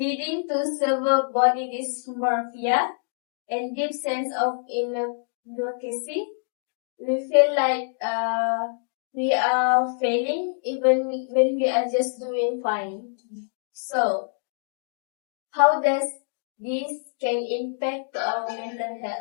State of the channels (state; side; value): silent; right; digital silence